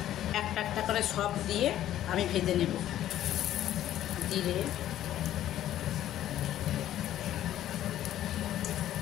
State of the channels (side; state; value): right; quieter; 12.4 dB